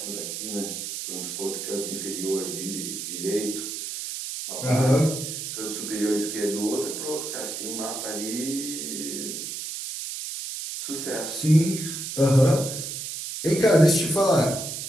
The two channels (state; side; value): noise; right; hiss, 6 dB below the sound